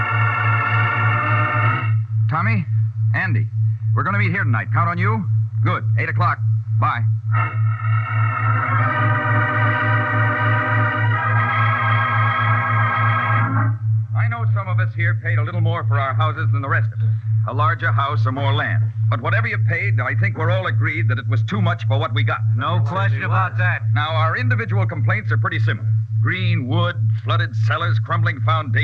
Tommy? Andy. We're going to meet here tonight. Count on you? Good. 8 o'clock. Bye. I know some of us here paid a little more for our houses than the rest of us. A larger house or more land. But whatever you paid, I think we're all agreed that it was too much for what we got. No question about that. Now, our individual complaints are pretty similar. Green wood, flooded cellars, crumbling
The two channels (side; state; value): both; identical; correlation 1.00